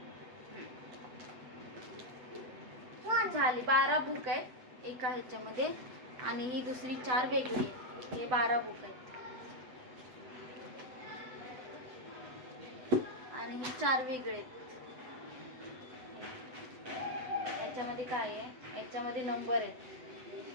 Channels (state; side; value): late; left; 8.0 ms